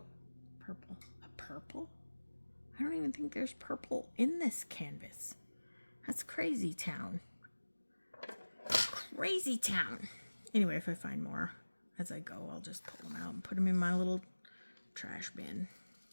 purple. A purple? I don't even think there's purple in this canvas. That's crazy town. Crazy town. Anyway, if I find more as I go, I'll just pull them out and put them in my little trash bin.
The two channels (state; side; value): inverted; both; correlation -1.00